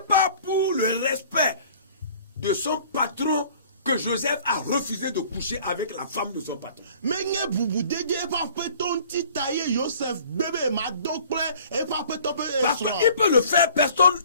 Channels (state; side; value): inverted; both; correlation -0.51